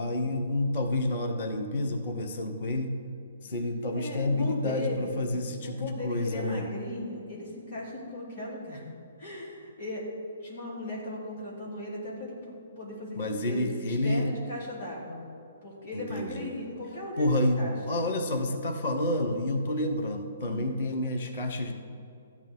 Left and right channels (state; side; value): inverted; both; correlation -0.62